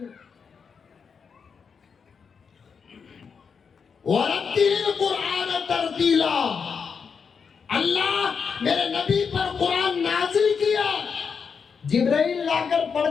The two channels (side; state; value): right; quieter; 6.0 dB